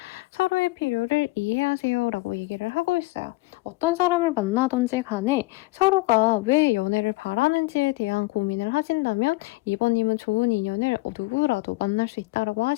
서로의 필요를 이해하세요 라고 얘기를 하고 있어요. 어떤 사람을 만나든지 간에 서로가 왜 연애를 바라는지에 대한 고민을 하신다면 2번님은 좋은 인연을 누구라도 만날 수 있다고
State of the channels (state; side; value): quieter; right; 21.9 dB